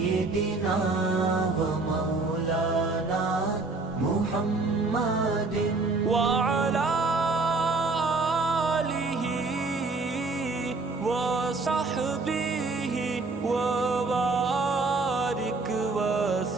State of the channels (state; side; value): quieter; left; 3.6 dB